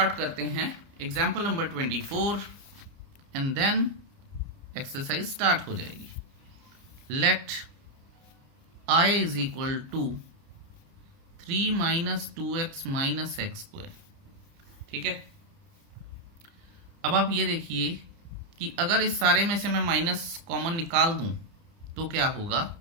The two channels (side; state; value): left; late; 30 ms